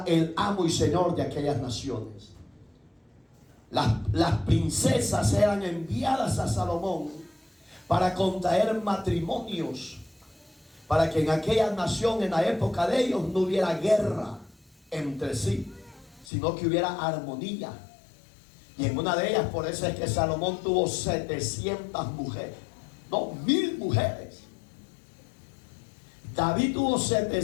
el amo y señor de aquellas naciones. Las princesas eran enviadas a Salomón para contraer matrimonios, para que en aquella nación, en la época de ellos, no hubiera guerra entre sí, sino que hubiera armonía. Y en una de ellas, por eso es que Salomón tuvo 700 mujeres, no, 1000 mujeres. David tuvo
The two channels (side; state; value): right; drops out; at 16.2 s